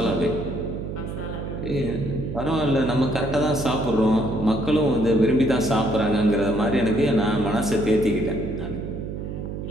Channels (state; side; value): noise; right; hum, 6 dB below the sound